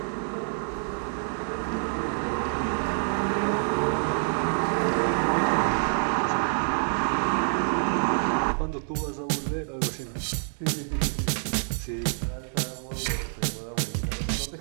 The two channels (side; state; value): left; silent; digital silence